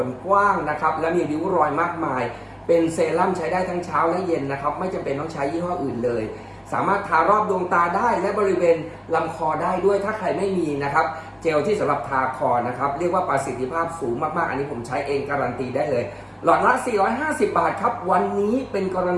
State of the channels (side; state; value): both; identical; correlation 1.00